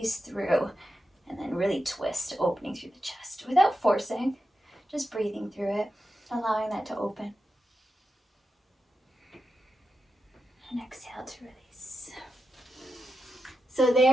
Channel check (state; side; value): normal; both; correlation 0.89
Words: through. And then really twist, opening through the chest without forcing, just breathing through it, allowing that to open. And exhale to release. So